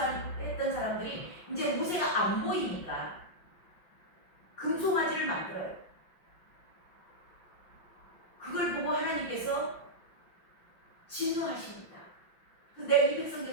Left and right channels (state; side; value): late; right; 5.7 ms